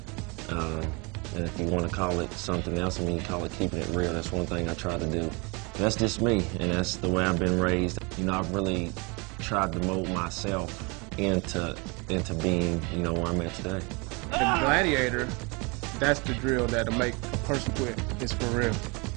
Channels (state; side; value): quieter; left; 29.4 dB